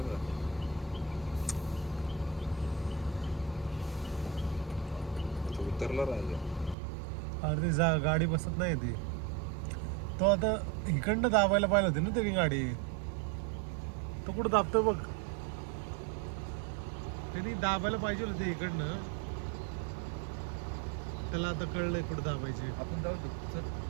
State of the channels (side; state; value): left; drops out; at 6.8 s